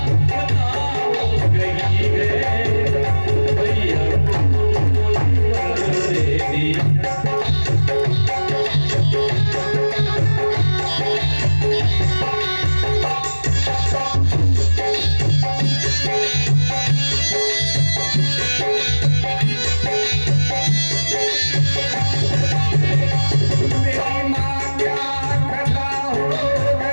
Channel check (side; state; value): both; inverted; correlation -1.00